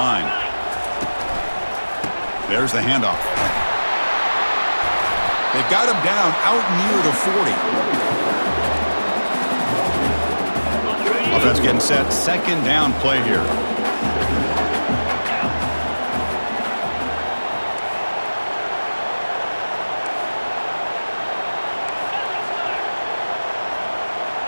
There's the handoff. They've got him down out near the 40. Offense getting set. 2nd down play here.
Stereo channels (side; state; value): both; inverted; correlation -1.00